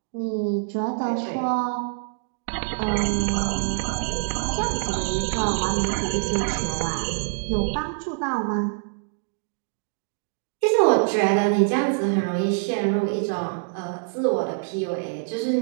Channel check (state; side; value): silent; left; digital silence